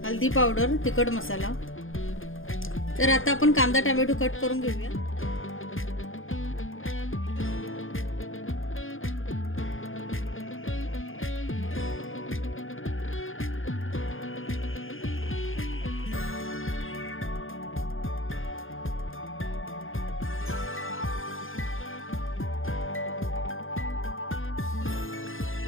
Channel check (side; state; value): right; late; 0.59 ms